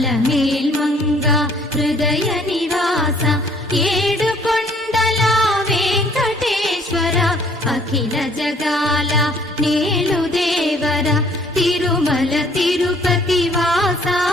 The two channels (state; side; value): normal; both; correlation 0.60